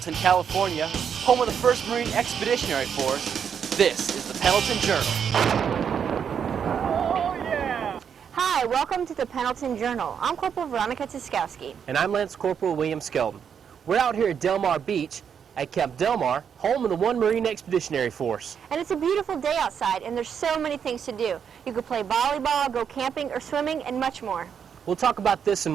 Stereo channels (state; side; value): quieter; left; 7.6 dB